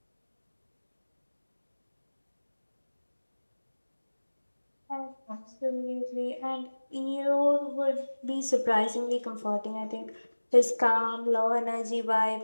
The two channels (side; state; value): both; inverted; correlation -1.00